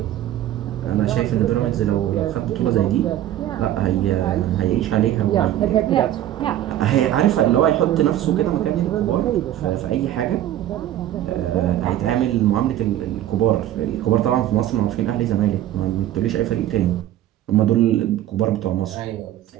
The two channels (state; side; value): quieter; left; 12.5 dB